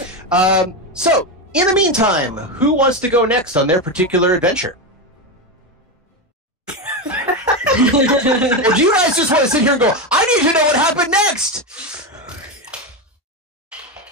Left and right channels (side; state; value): both; normal; correlation 0.13